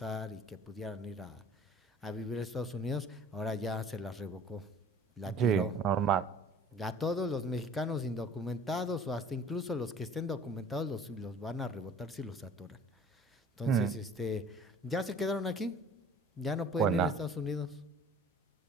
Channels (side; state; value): both; normal; correlation 0.49